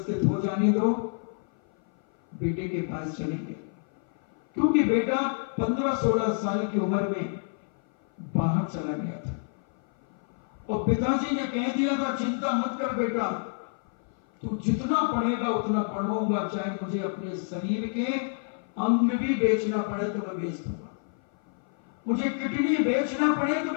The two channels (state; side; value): silent; right; 56 dB below the other